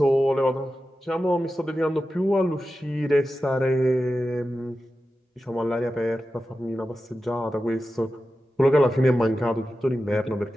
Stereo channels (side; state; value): both; normal; correlation 0.92